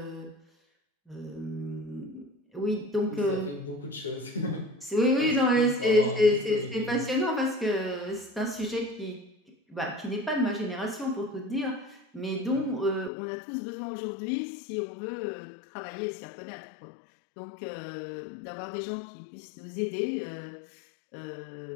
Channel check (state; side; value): drops out; right; at 13.1 s